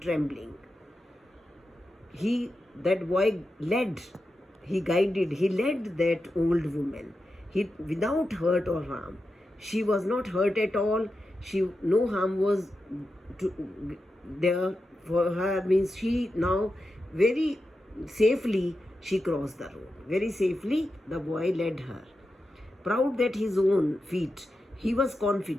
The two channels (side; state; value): both; normal; correlation 0.90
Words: That boy led. He led that old woman. Without hurt or harm. She was not hurt at all. No harm was there for her. Means she now very safely she crossed the road. Very safely the boy led her. Proud that his own feet, he was